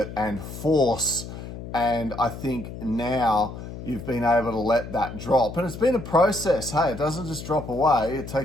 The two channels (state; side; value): noise; left; hum, 10 dB below the sound